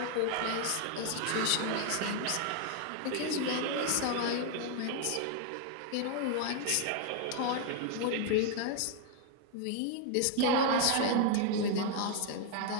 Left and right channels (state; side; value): different; both; correlation 0.00